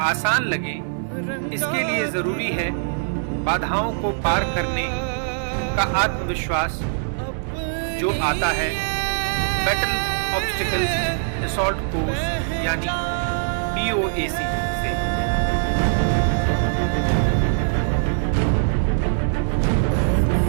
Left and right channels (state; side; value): silent; left; digital silence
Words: आसान लगे, इसके लिए जरूरी है बाधाओं को पार करने का आत्मविश्वास जो आता है बैटल ऑब्स्टिकल असॉल्ट कोर्स यानी BOAC से।